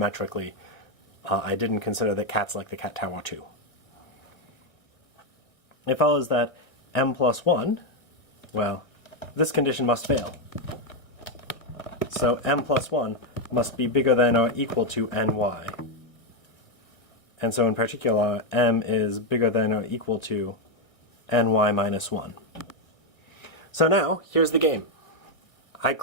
I didn't consider that cats like the cat tower too. It follows that m plus 1, well, this condition must fail. So m plus 1 must be bigger than or equal to ny. And so in particular, m is bigger than or equal to ny minus 1. So now, here's the game. I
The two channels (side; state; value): right; late; 1.6 ms